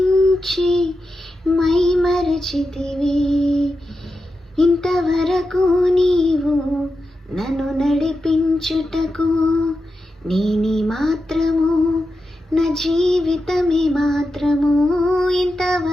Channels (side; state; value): both; normal; correlation 0.89